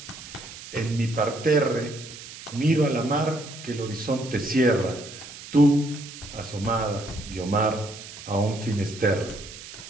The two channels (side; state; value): right; noise; hiss, 14 dB below the sound